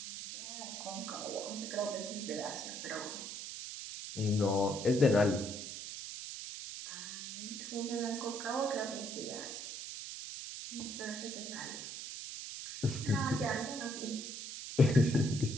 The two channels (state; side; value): noise; right; hiss, 8 dB below the sound